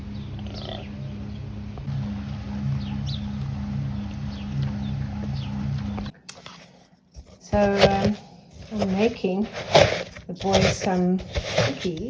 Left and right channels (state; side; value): identical; both; correlation 1.00